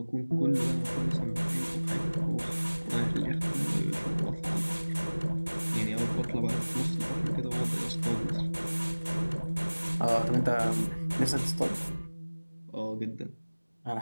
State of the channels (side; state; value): both; inverted; correlation -1.00